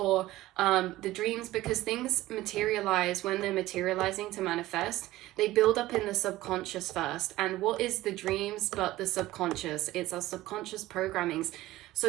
the dreams, because things materialize when they're materializing to manifest. They build up in the subconscious first. And what is the dreams but the subconscious? It's our subconscious programmings.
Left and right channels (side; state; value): left; quieter; 16.7 dB